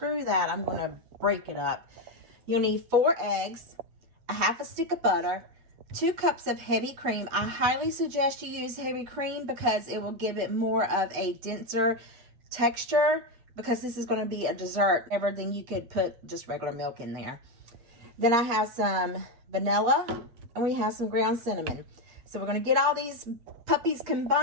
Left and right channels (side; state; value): left; late; 8.9 ms